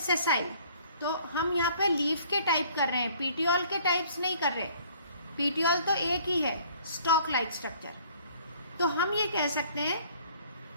तो हम यहाँ पे लीफ के टाइप कर रहे हैं, पीटियोल के टाइप्स नहीं कर रहे। पीटियोल तो एक ही है, स्टॉक लाइक स्ट्रक्चर। तो हम ये कह सकते हैं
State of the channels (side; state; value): both; inverted; correlation -0.57